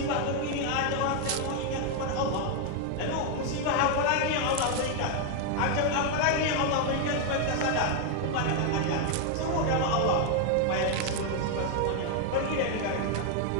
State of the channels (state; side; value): different; both; correlation 0.01